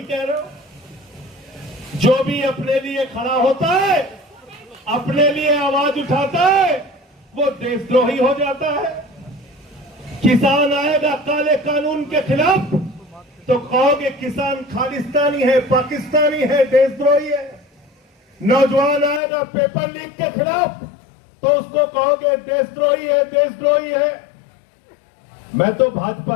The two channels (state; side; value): drops out; right; at 19.2 s